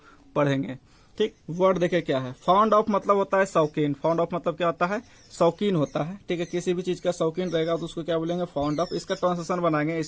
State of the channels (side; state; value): both; identical; correlation 1.00